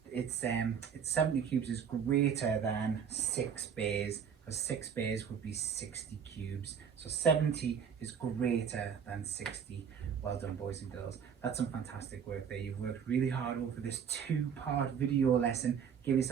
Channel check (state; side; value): quieter; left; 7.5 dB